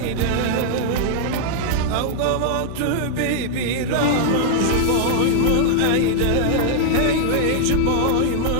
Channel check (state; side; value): different; both; correlation 0.00